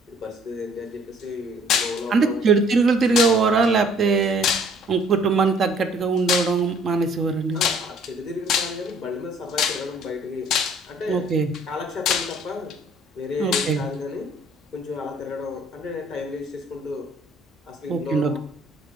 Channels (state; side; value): normal; both; correlation 0.58